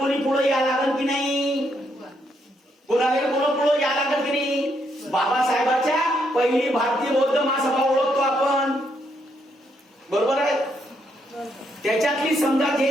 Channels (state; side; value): normal; both; correlation 0.76